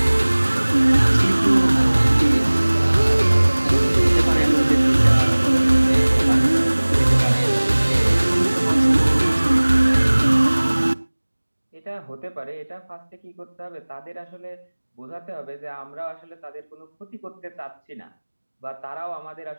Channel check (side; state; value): both; inverted; correlation -1.00